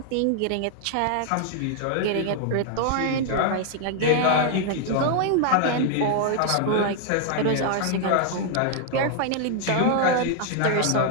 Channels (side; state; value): both; different; correlation 0.00